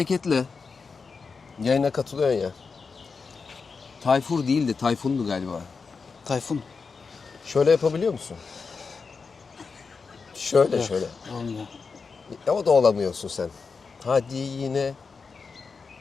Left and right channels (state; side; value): quieter; right; 4.9 dB